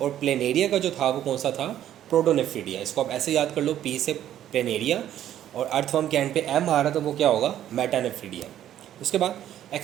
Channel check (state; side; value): quieter; left; 11.5 dB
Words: प्लेनेरिया का जो था वो कौन सा था? प्रोटोनेफ्रीडिया। इसको आप ऐसे याद कर लो, पी से प्लेनेरिया और अर्थवर्म के एंड पे एम आ रहा, तो वो क्या होगा? मेटानेफ्रीडिया। उसके बाद